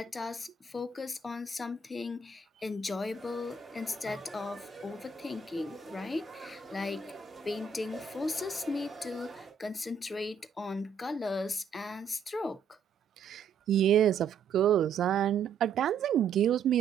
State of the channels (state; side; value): quieter; left; 5.2 dB